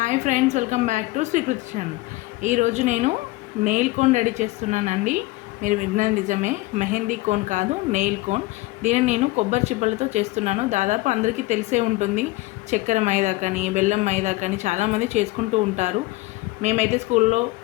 Hi friends, welcome back to Srikriti channel. ఈరోజు నేను nail cone ready చేస్తున్నానండి. మీరు విన్నది నిజమే, మెహందీ కోన్ కాదు, నెయిల్ కోన్. దీన్ని నేను కొబ్బరి చిప్పలతో చేస్తున్నాను. దాదాపు అందరికీ తెలిసే ఉంటుంది. చక్కెర మైదా కానీ బెల్లం మైదా కానీ చాలామంది చేసుకుంటూ ఉంటారు. మేమైతే స్కూల్లో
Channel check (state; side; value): quieter; right; 20.3 dB